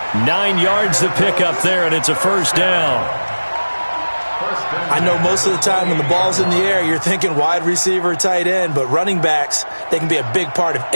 9 yards to pick up there, and it's a first down. I know most of the time when the ball's in the air, you're thinking wide receiver, tight end, but running backs, they can be a big part of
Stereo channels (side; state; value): both; inverted; correlation -1.00